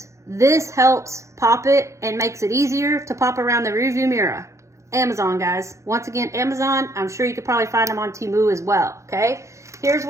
This helps pop it and makes it easier to pop around the rearview mirror. Amazon, guys. Once again, Amazon. I'm sure you could probably find them on Temu as well, okay? Here's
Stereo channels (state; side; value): late; left; 0.15 ms